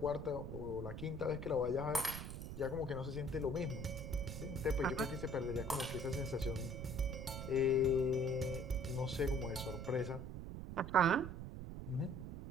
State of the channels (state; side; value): noise; right; rumble, 7 dB below the sound